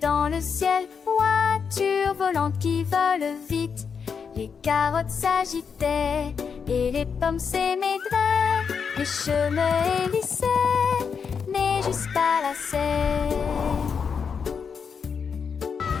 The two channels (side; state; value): right; quieter; 6.2 dB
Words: le ciel, voitures volantes qui volent vite. Les carottes s'agitaient et les pommes s'émaidraient. Les chemins hélissaient, mais jusqu'à la serre.